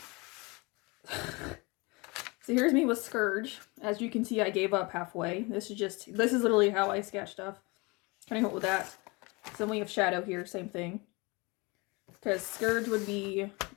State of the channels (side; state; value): right; quieter; 26.6 dB